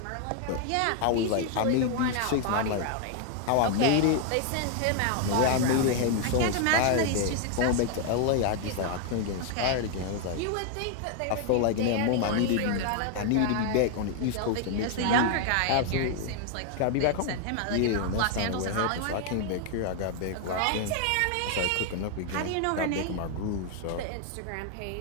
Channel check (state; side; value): different; both; correlation 0.00